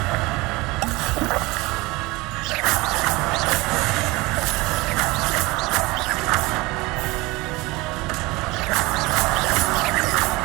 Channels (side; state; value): left; quieter; 22.6 dB